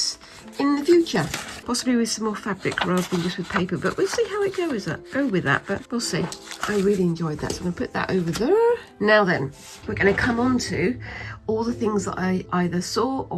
in the future, possibly with some more fabric rather than just with paper, but we'll see how it goes. Go with that, but we'll see. I really enjoyed that, so I'm going to put that over there. Now then, we're going to come on to all the things that I either saw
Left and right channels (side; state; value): both; identical; correlation 1.00